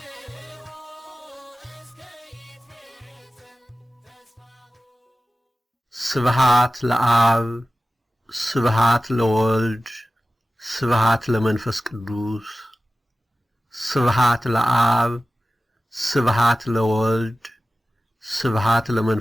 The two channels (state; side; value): normal; both; correlation 0.96